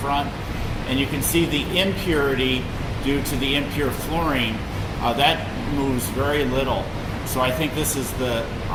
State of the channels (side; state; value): both; identical; correlation 1.00